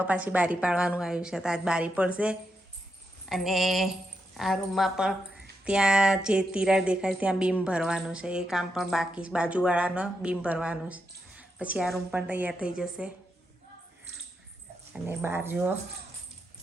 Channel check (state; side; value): normal; both; correlation 0.84